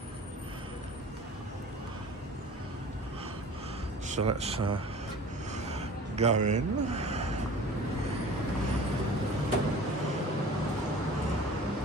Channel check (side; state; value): both; normal; correlation 0.43